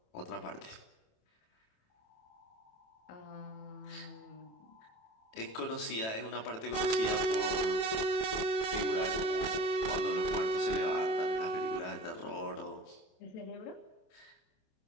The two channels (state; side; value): late; right; 27 ms